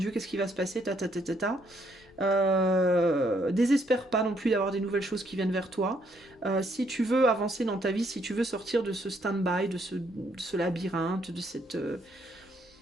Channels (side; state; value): both; normal; correlation 0.71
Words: qu'est-ce qui va se passer, ta, ta, ta, ta, ta. Désespère pas non plus d'avoir des nouvelles choses qui viennent vers toi. Si tu veux avancer dans ta vie, si tu veux sortir de ce stand-by, de ce labyrinthe, de